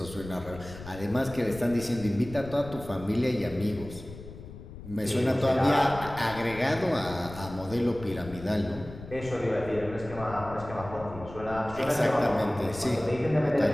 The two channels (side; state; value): left; noise; rumble, 14 dB below the sound